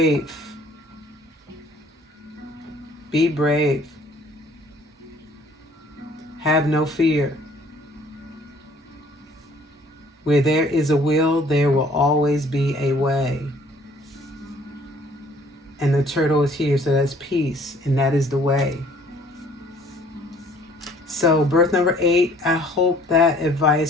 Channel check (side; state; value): both; normal; correlation 0.57